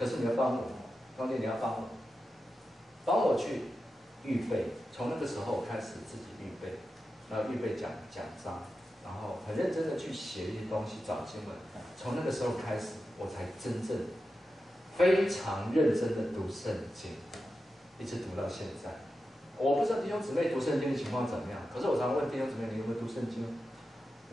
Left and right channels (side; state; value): both; normal; correlation 0.91